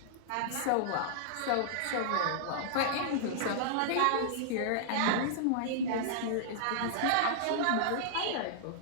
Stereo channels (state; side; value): different; both; correlation -0.01